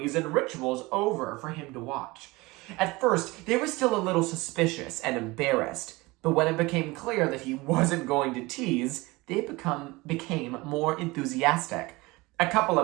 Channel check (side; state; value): left; quieter; 22.4 dB